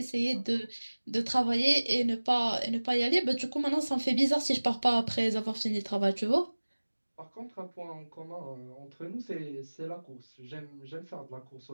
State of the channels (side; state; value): both; inverted; correlation -1.00